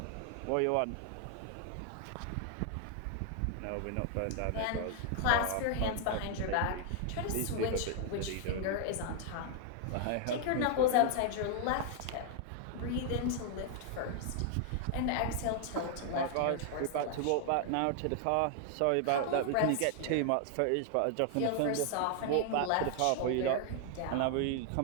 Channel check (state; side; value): different; both; correlation 0.00